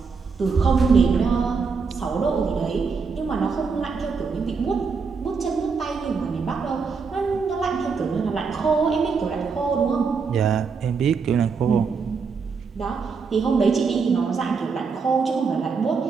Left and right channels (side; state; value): left; quieter; 5.2 dB